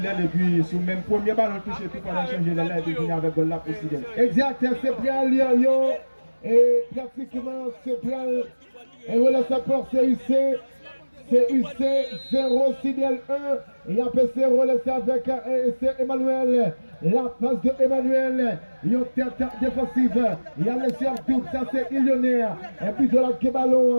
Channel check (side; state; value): both; inverted; correlation -1.00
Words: et puis sur le même premier ballon touché, puis pendant changer l'aile et puis venir avec goal là pour Sidel. Exact, c'est bien Lyon et pratiquement c'est bien. Et voilà, ça porte CUC. CUC 0, Sidel 1. Et après c'est relancé avec Emmanuel. La passe de Emmanuel. Il y a une tête défensive. Il y a le sur double, ça c'est Illionnaire. Et puis de la